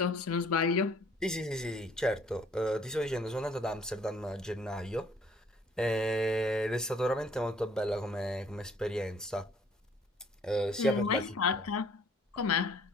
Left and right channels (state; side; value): normal; both; correlation 0.58